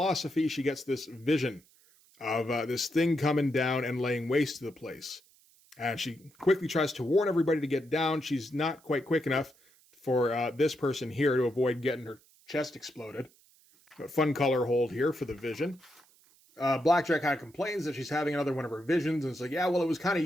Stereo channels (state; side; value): noise; right; hiss, 30 dB below the sound